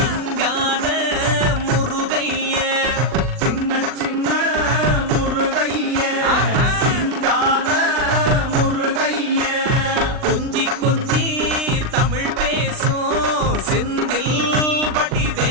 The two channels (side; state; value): left; late; 39 ms